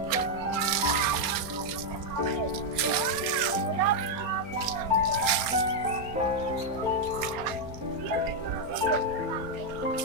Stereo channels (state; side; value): late; left; 4.3 ms